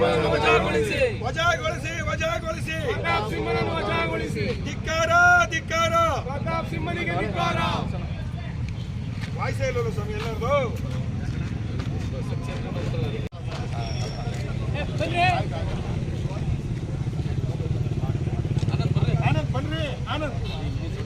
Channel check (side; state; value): both; identical; correlation 1.00